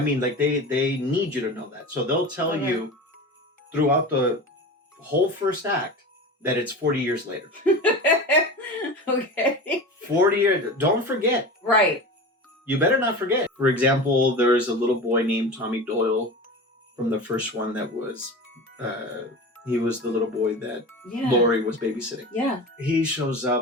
like, they need you to know that. So they'll tell you throughout the whole first act that it's 40 years later. Okay. 40 years. Don't forget. Right. You better not forget. For example, there's a little boy named Tommy Doyle from the first one that was, he was the little boy that Laurie was babysitting. Yeah. He shows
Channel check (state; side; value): normal; both; correlation 0.31